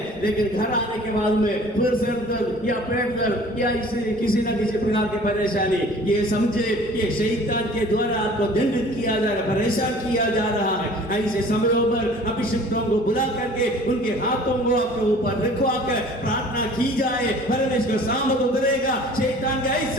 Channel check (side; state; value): both; normal; correlation 0.48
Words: लेकिन घर आने के बाद में फिर सिर दर्द या पेट दर्द या इसे किसी न किसी प्रकार की परेशानी, ये समझे ये शैतान के द्वारा आपको दंडित किया जा रहा है, परेशान किया जा रहा है. ऐसे समयों पर अभिषिक्तों को बुला करके उनके हाथों को आपके ऊपर रखवा कर प्रार्थना की जाए, परमेश्वर सामर्थ उतरेगा. शैतान के